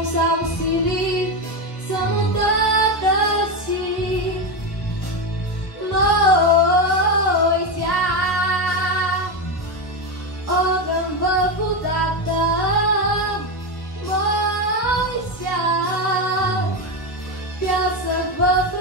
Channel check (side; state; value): right; late; 1.3 ms